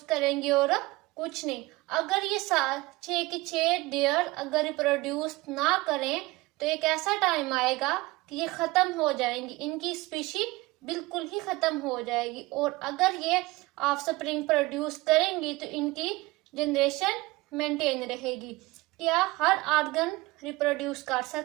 करेंगी और कुछ नहीं। अगर ये 6 डेयर अगर रिप्रोड्यूस ना करें तो एक ऐसा टाइम आएगा कि ये ख़त्म हो जाएंगी, इनकी स्पीशी बिल्कुल ही ख़त्म हो जाएगी। और अगर ये ऑफस्प्रिंग प्रोड्यूस करेंगी तो इनकी जनरेशन मेंटेन रहेगी। क्या हर ऑर्गन रिप्रोड्यूस कर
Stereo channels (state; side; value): quieter; left; 21.3 dB